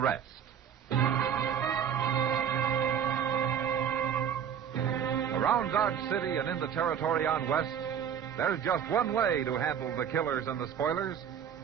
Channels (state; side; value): quieter; left; 8.3 dB